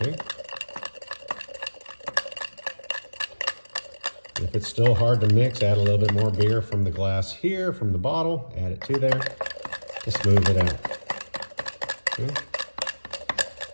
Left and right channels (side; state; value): both; inverted; correlation -1.00